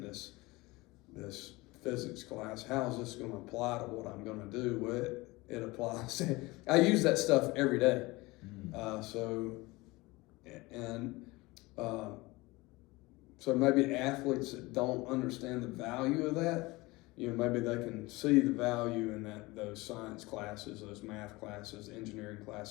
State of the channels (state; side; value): quieter; right; 22.1 dB